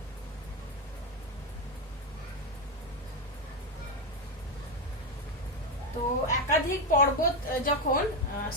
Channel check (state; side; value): normal; both; correlation 0.08